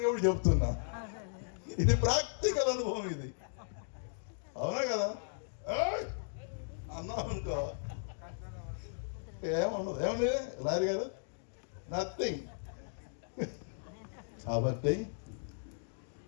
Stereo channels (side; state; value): right; silent; digital silence